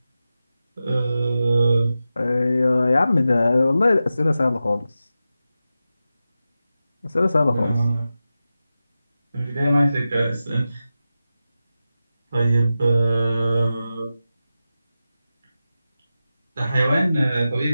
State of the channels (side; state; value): both; inverted; correlation -0.92